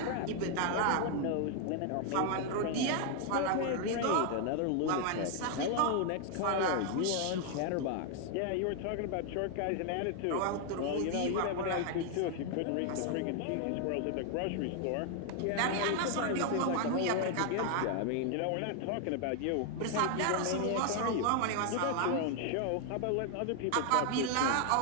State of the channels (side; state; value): both; different; correlation 0.00